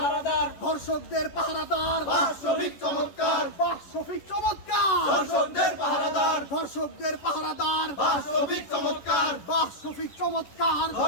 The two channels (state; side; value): late; right; 11 ms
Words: ধর্ষকদের পাহারাদার, বাস্তবিক চমৎকার, বাস্তবিক চমৎকার, ধর্ষকদের পাহারাদার, ধর্ষকদের পাহারাদার, বাস্তবিক চমৎকার, বাস্তবিক চমৎকার,